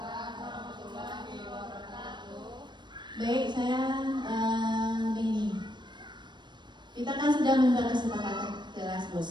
Baik, saya begini. Kita kan sudah membuat kesepakatan kelas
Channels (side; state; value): left; late; 0.22 ms